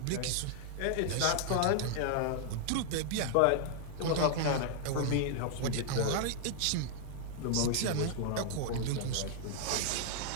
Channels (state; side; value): different; both; correlation 0.00